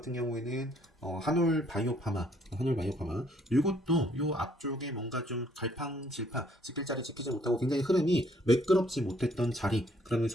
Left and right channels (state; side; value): normal; both; correlation 0.64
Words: 경우에는 한올 바이오파마 이것도 요 앞쪽에 뭔가 좀 갈팡질팡 지킬 자리 지키지 못하고 굉장히 흐름이 매끄럽지 못했던 자리